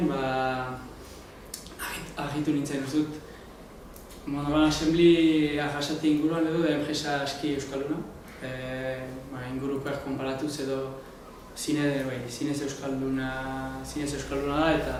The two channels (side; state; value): both; identical; correlation 1.00